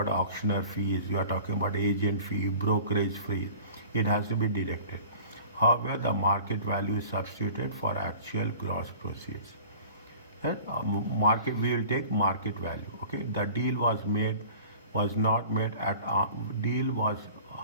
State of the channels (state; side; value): inverted; both; correlation -0.44